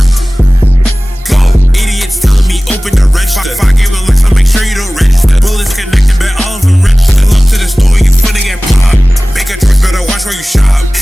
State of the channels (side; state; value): both; normal; correlation 0.98